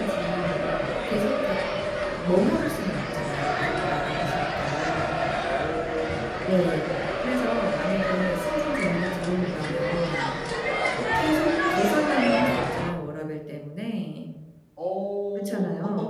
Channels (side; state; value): both; identical; correlation 1.00